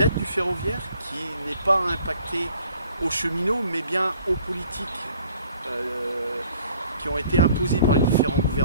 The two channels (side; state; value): both; inverted; correlation -0.57